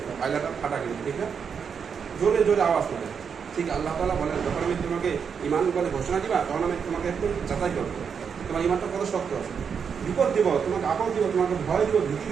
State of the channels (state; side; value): quieter; left; 6.6 dB